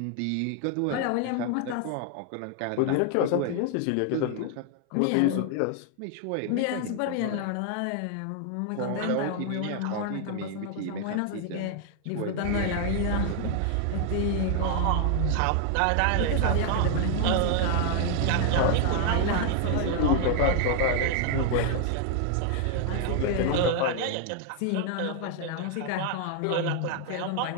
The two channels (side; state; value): both; different; correlation 0.00